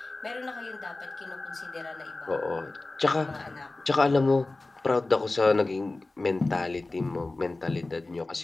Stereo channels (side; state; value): right; quieter; 3.1 dB